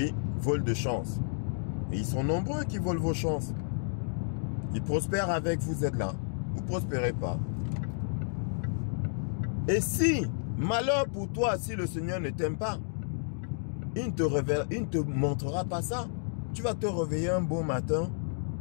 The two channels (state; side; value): silent; right; digital silence